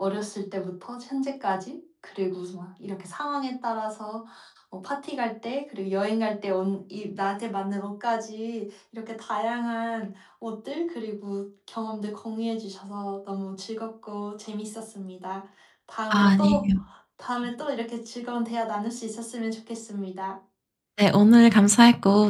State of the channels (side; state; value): both; identical; correlation 1.00